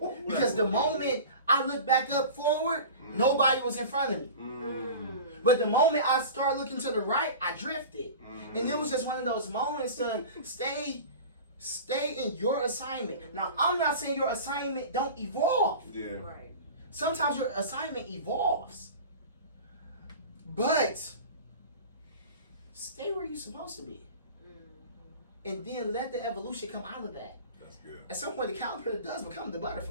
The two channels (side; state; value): both; inverted; correlation -0.35